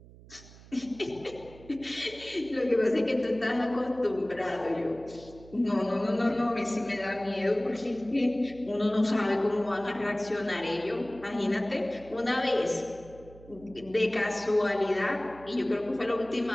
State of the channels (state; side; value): noise; right; hum, 21 dB below the sound